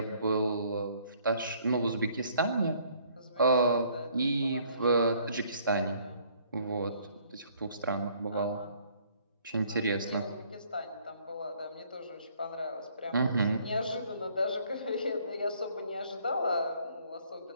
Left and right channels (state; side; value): inverted; both; correlation -0.62